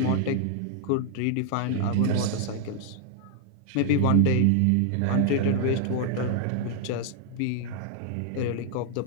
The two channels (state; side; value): different; both; correlation 0.00